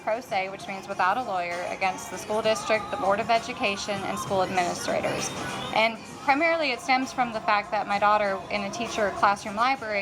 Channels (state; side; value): identical; both; correlation 1.00